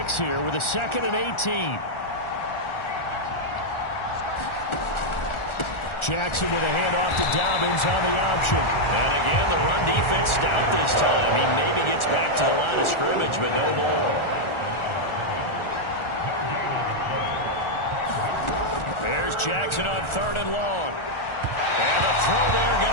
here with a 2nd and 18. Jackson with a handoff to Dobbins on the option. And again, the run defense stout this time. He maybe gets back to the line of scrimmage, but no more. There's Jackson on 3rd and long. And the throw there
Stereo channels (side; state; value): right; late; 1.4 ms